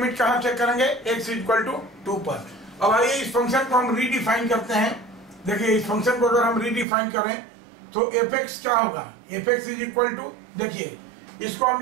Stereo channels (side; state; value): left; drops out; at 6.9 s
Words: कहाँ चेक करेंगे, x इक्वल टू 2 पर. अब आइए इस फंक्शन को हम रीडिफाइन करते हैं. देखिए, इस फंक्शन को अगर हम रीडिफाइन करें तो fx क्या होगा, fx इज इक्वल टू, देखिए इसको हम